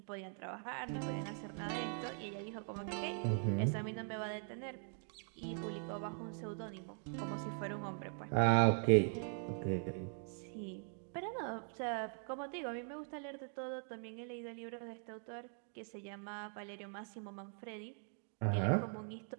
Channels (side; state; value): left; silent; 50 dB below the other